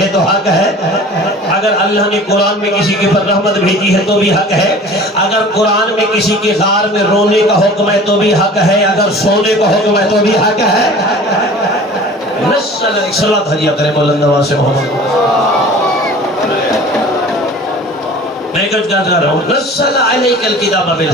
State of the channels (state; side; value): normal; both; correlation 0.43